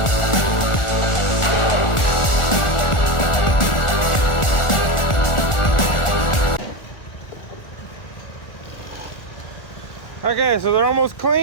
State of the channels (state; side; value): late; right; 1.4 ms